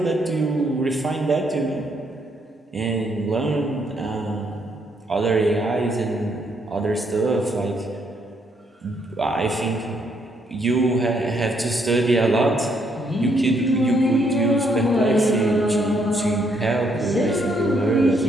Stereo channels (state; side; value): normal; both; correlation 0.72